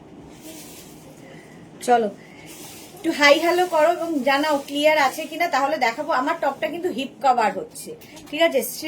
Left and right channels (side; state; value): both; identical; correlation 1.00